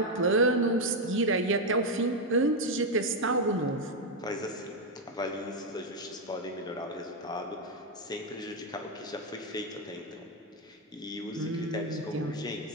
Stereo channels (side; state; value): both; normal; correlation 0.04